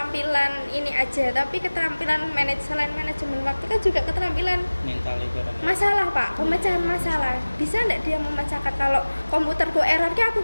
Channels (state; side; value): inverted; both; correlation -1.00